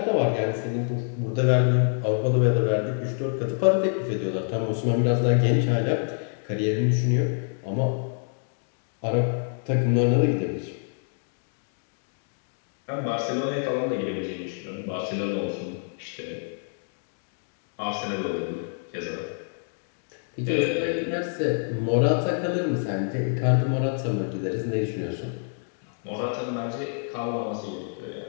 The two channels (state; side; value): silent; right; digital silence